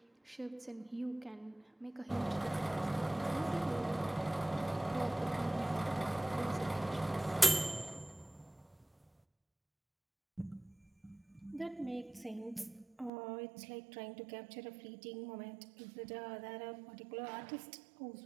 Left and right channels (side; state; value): left; drops out; at 13.1 s